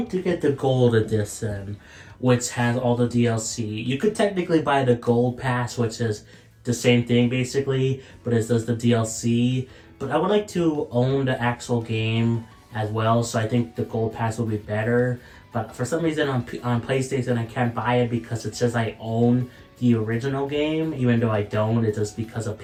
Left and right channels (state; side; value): identical; both; correlation 1.00